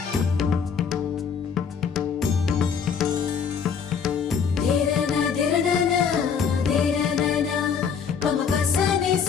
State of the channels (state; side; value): quieter; right; 6.6 dB